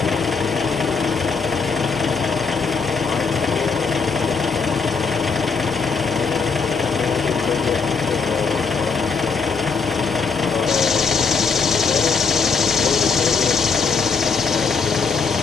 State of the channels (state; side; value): quieter; right; 5.1 dB